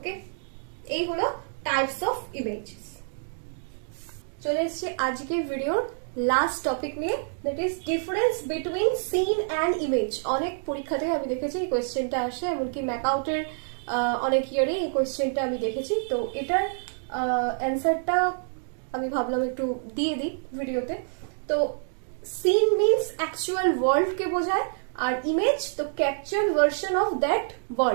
এই হলো টাইপস অফ ইমেজেস। চলে এসেছি আজকের ভিডিওর লাস্ট টপিক নিয়ে, that is difference between scene and image. অনেক পরীক্ষাতে আমি দেখেছি এই কোয়েশ্চেনটা আসে, এমনকি ম্যাকআউটের অনেক ইয়ারে এই কোয়েশ্চেনটা আমি দেখেছি। তো এটার অ্যান্সারটা আমি ভাবলাম একটু দিয়ে দিই ভিডিওতে। তো সিন মিনস অ্যাকচুয়াল ওয়ার্ল্ডকে বোঝায়, আর ইমেজ তো capture version of that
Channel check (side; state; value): left; silent; digital silence